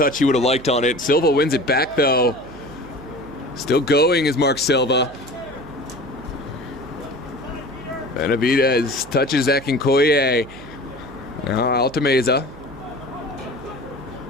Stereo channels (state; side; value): noise; right; hum, 20 dB below the sound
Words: he would have liked on it. Silva wins it back, though. Still going is Mark Silva. Benavidez touches Akinkoye. Now Altameza.